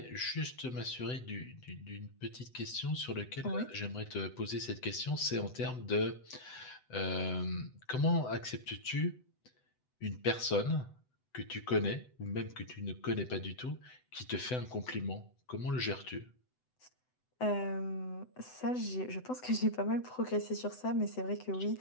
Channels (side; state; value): right; late; 7.9 ms